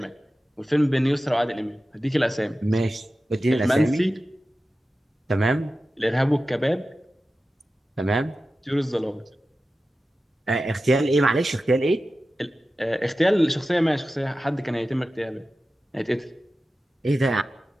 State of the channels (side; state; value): both; normal; correlation 0.94